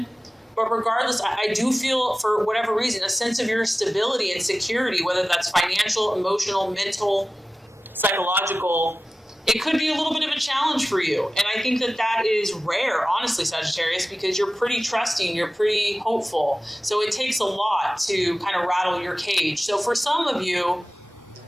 But regardless, I do feel, for whatever reason, a sense of your stability and security, whether that's financial, emotional, mental, psychological. It could be a little bit of a challenge for you. And I think that is rare, honestly, Sagittarius, because you're pretty trusting, you're pretty hopeful. So it takes a lot to kind of rattle your cage. So for some of you,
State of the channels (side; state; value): both; normal; correlation 0.96